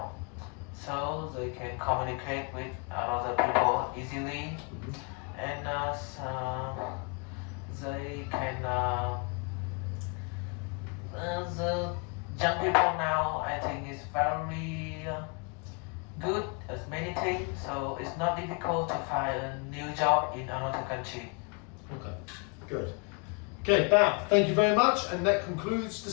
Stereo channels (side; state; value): right; quieter; 34.5 dB